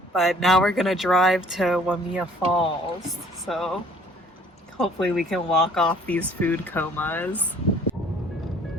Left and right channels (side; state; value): both; normal; correlation 0.56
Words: But now we're gonna drive to Waimea Falls. So hopefully we can walk off these food comas.